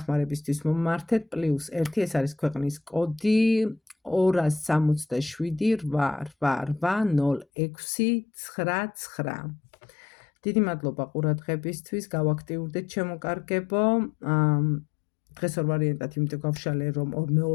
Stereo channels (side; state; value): right; drops out; at 7.5 s